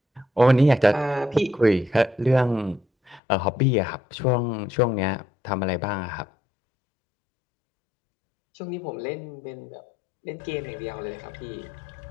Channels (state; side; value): drops out; right; at 3.2 s